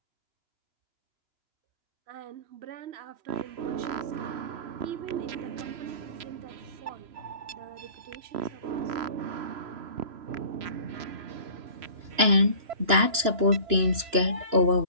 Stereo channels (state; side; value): late; left; 2.9 ms